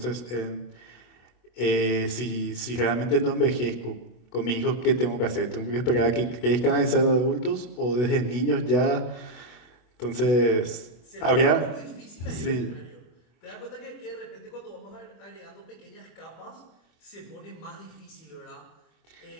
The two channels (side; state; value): right; late; 24 ms